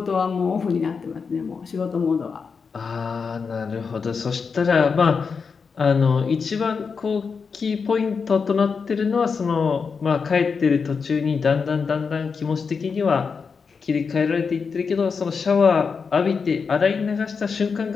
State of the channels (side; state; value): right; quieter; 5.4 dB